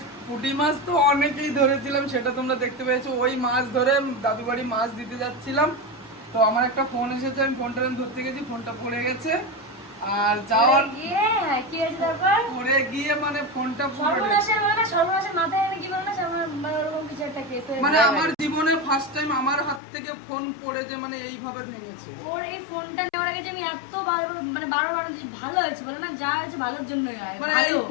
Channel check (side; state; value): right; drops out; at 19.8 s